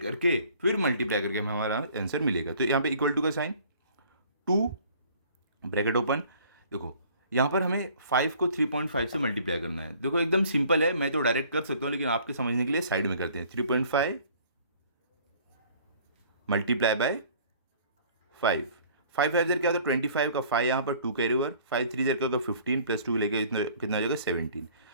करके फिर मल्टीप्लाई करके हमें हमारा आंसर मिलेगा। तो यहाँ पे इक्वल टू का साइन, 2 ब्रैकेट ओपन, देखो यहाँ पर हमें 5 को 3.5 से मल्टीप्लाई करना है। देखो एकदम सिंपल है, मैं तो डायरेक्ट कर सकता हूँ लेकिन आपके समझने के लिए साइड में करते हैं। 3.5 मल्टीप्लाई बाय 5, 5 5 जर क्या होता है 25 का 5 यहाँ पर 2 कैरी ओवर, 5 3 जर क्या होगा 15 प्लस 2 लेके कितना हो जाएगा 17।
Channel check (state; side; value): inverted; both; correlation -0.54